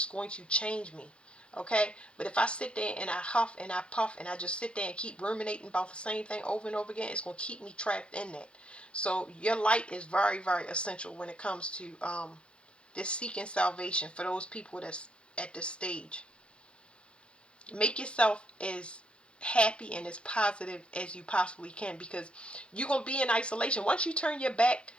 going to change me. Okay? But if I sit there and I huff and I puff and I just sit there and keep ruminating about the same thing over and over again, it's going to keep me trapped in that. So your light is very, very essential when it comes to this seeking salvation for those people that's at this stage. Make yourself as happy and as positive as you possibly can, because you're going to be in isolation. Once you turn your back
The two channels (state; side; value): late; right; 0.058 ms